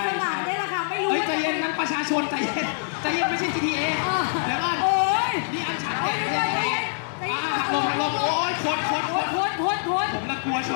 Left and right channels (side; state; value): right; silent; digital silence